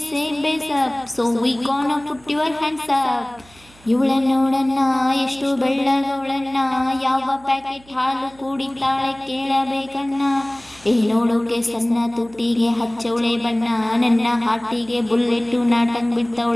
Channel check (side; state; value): right; noise; hum, 26 dB below the sound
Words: same bass up, so we gonna put your hands up. ಇವಳನ್ನ ನೋಡನ್ನ ಎಷ್ಟು ಬೆಳ್ಳಗವಳನ್ನ, ಯಾವ ಪ್ಯಾಕೆಟ್ ಹಾಲು ಕುಡಿತಾಳೆ ಕೇಳಬೇಕನ್ನ. ನೋಡೋಕೆ ಸಣ್ಣ ತುಟಿಗೆ ಹಚ್ಚವಳೆ ಬಣ್ಣ, ನನ್ನ ಹಾಟಿಗೆ ಬುಲ್ಲೆಟ್ಟು ನಾಟಂಗ್